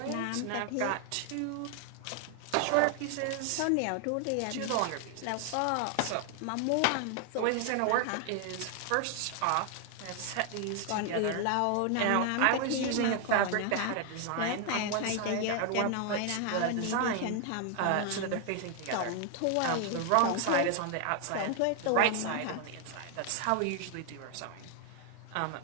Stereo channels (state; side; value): different; both; correlation 0.00